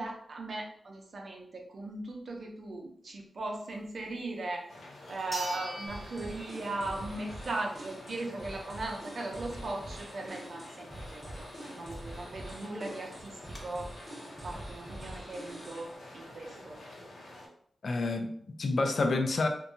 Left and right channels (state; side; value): normal; both; correlation 0.88